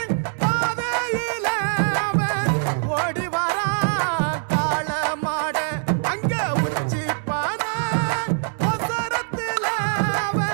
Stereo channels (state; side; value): silent; left; digital silence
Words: பாதையில அவன் ஓடி வரா காள மாட, அங்க உச்சி பான ஒசரத்துல